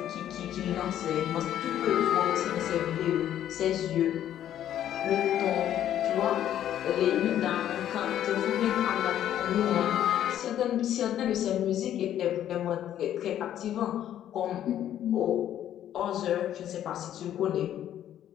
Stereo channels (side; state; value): right; quieter; 11.2 dB